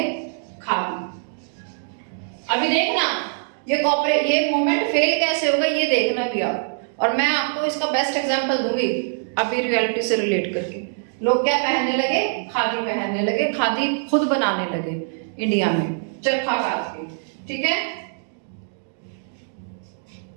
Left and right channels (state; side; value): silent; left; digital silence